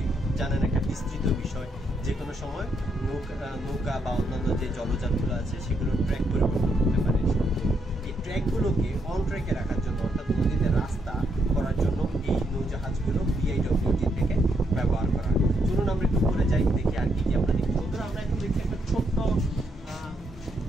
জানেন একটা বিস্তৃত বিষয়, যে কোনো সময় নৌকা বা অন্যান্য যে জলযানগুলো আছে সেগুলোর ট্র্যাক পরিবর্তন করতে পারে। এই ট্র্যাকগুলোকে অন ট্র্যাকে রাখার জন্য, অর্থাৎ নদীতে রাস্তা করার জন্য এই নৌজাহাজগুলো বিআইডব্লিউটি থেকে ব্যবহার করা হয়। চলুন আমরা একটু করে যাই, দেখি আর কি আমরা দেখি। বন্ধুরা, আমরা এখন দেখছি একটা ছোট্ট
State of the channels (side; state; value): both; normal; correlation 0.77